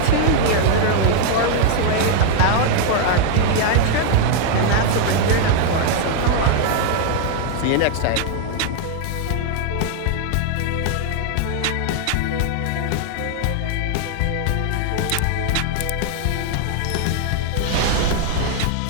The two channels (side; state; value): both; different; correlation 0.00